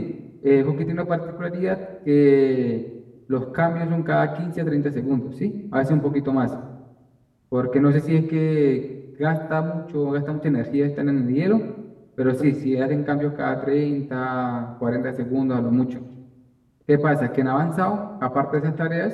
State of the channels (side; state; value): both; identical; correlation 1.00